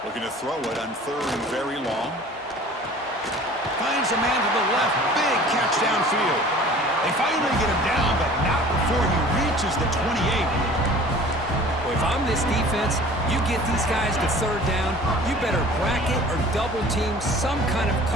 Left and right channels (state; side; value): normal; both; correlation 0.46